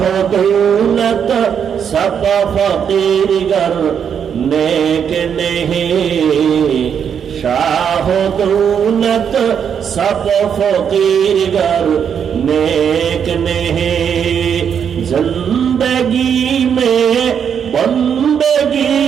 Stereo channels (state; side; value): quieter; left; 7.8 dB